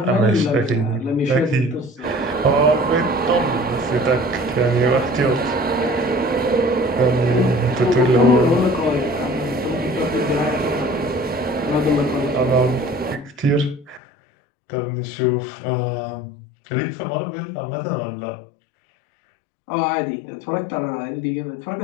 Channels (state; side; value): drops out; right; at 14.0 s